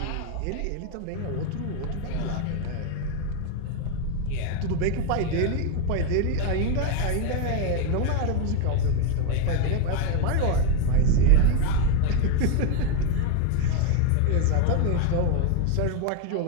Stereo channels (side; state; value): both; different; correlation 0.01